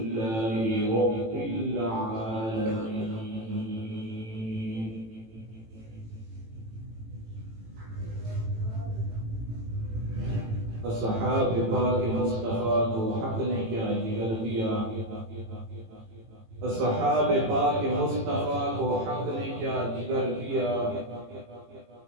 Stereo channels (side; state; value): left; late; 18 ms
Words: رب العالمين. اصحاب پاک مصطفیٰ کو حق نے کیا جگر دیا، اصحاب پاک مصطفیٰ کو حق نے کیا جگر دیا،